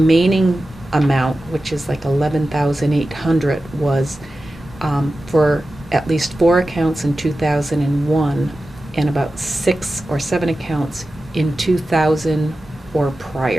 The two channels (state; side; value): normal; both; correlation 0.94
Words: amount, which is like 11,800, was for at least 4 accounts in 2001 and about 6 or 7 accounts in 2000 or